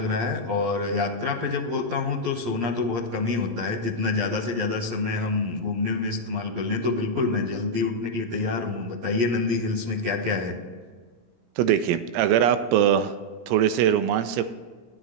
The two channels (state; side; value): late; left; 17 ms